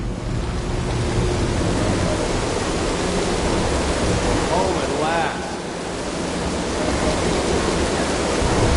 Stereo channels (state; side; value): identical; both; correlation 1.00